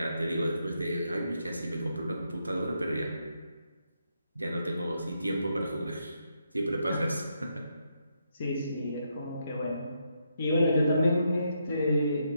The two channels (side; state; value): both; inverted; correlation -0.79